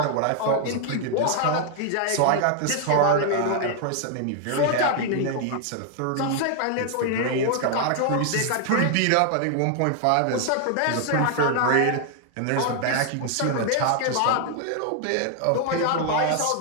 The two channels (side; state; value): both; different; correlation 0.00